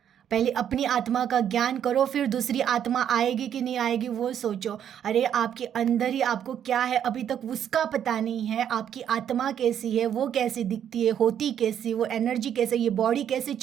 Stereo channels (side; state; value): left; quieter; 9.4 dB